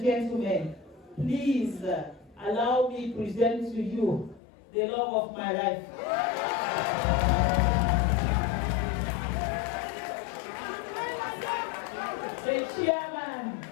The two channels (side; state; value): right; drops out; at 4.4 s